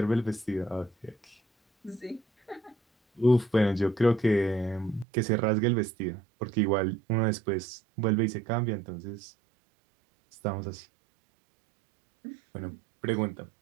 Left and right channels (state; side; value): drops out; left; at 5.1 s